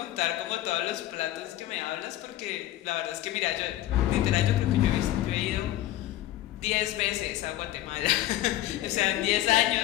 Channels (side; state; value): right; quieter; 14.5 dB